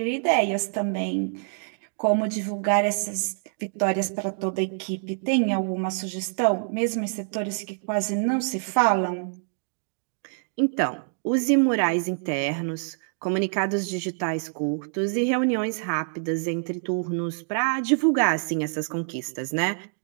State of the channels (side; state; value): left; silent; digital silence